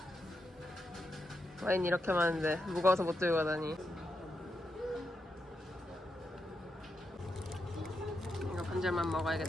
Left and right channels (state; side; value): normal; both; correlation 0.85